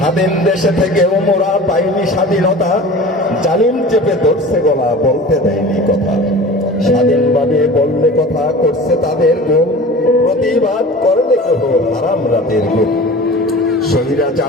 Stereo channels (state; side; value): normal; both; correlation 0.38